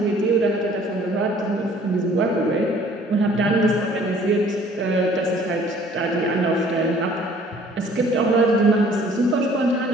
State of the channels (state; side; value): normal; both; correlation 0.55